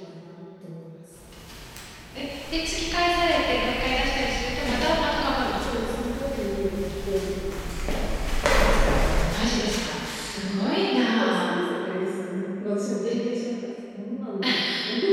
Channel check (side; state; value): both; identical; correlation 1.00